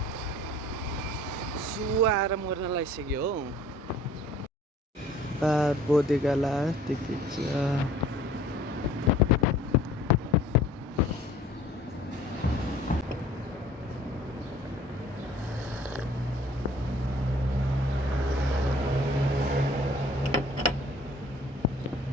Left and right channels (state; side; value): normal; both; correlation 0.52